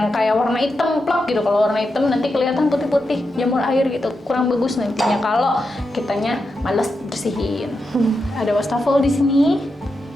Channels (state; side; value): normal; both; correlation 0.87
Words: kayak warna hitam plok gitu. Kalau warna hitam nanti kelihatan putih-putih jamur air gitu, kurang bagus nantinya kalau kitanya males bersihin. Ada wastafel di sini.